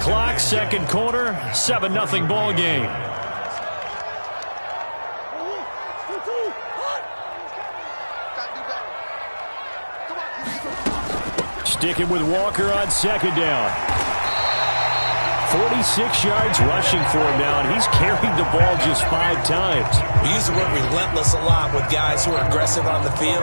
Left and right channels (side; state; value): both; inverted; correlation -1.00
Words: 2nd quarter, 7-0 ball game. Sticking with Walker on 2nd down. 46 yards rushing for him now, and he's carried the ball just 5 times. We use the word relentless a lot with guys who are aggressive on the